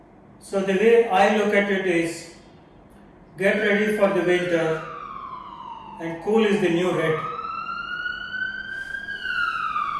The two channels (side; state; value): both; identical; correlation 1.00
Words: So the way I look at it is, get ready for the winter, and cool is the new red.